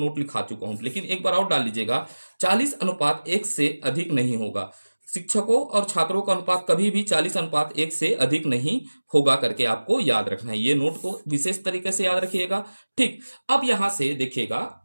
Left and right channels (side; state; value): both; inverted; correlation -1.00